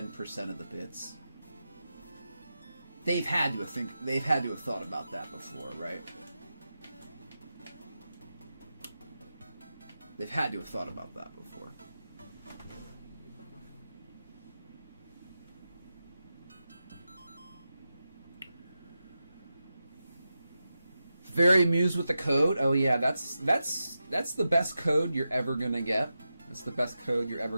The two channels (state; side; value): inverted; both; correlation -0.90